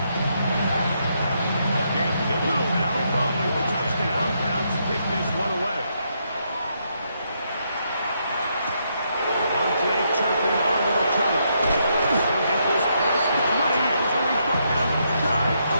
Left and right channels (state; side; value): inverted; both; correlation -0.77